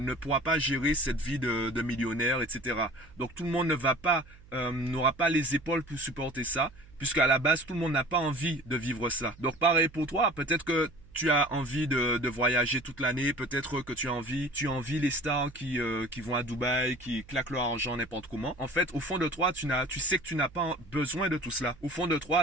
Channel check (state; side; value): noise; right; hum, 23 dB below the sound